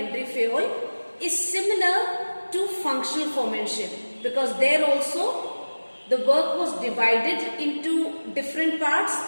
Fayol is similar to functional foremanship, because there also the work was divided into different parts,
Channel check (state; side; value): inverted; both; correlation -1.00